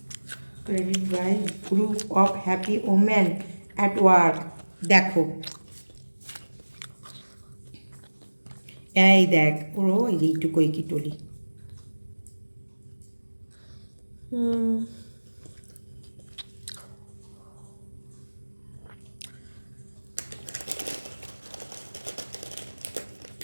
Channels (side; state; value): both; inverted; correlation -1.00